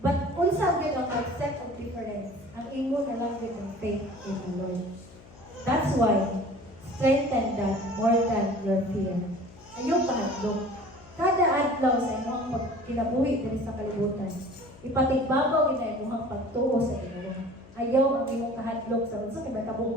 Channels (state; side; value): noise; left; hum, 22 dB below the sound